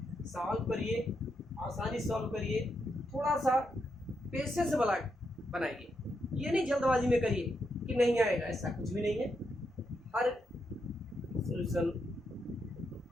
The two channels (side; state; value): both; normal; correlation 0.82